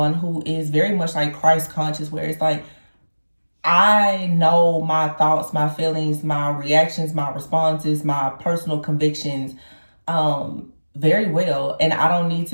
who is very much like Christ conscious, where it's like, I know my thoughts, my feelings, my reactions, my responses, my personal convictions very well, and I don't need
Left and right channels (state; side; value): inverted; both; correlation -1.00